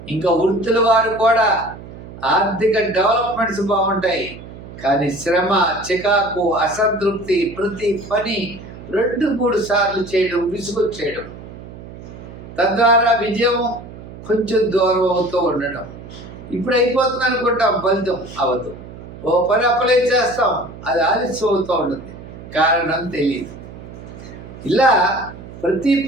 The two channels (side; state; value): right; noise; hum, 15 dB below the sound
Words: ఇంకా వృత్తుల వారు కూడా ఆర్థిక డెవలప్మెంట్స్ బాగుంటాయి, కానీ శ్రమ, చికాకు, అసంతృప్తి, ప్రతి పని 2-3 సార్లు చేయడం, విసుగొచ్చేయడం, తద్వారా విజయం కొంచెం దూరం అవుతూ ఉండడం. ఇప్పుడు అయిపోతుంది అనుకుంటాం, ఫలితం అవ్వదు. ఓ పని అప్లై చేస్తాం, అది ఆలస్యం అవుతూ ఉంటుంది, కారణం తెలియదు. ఇలా ప్రతి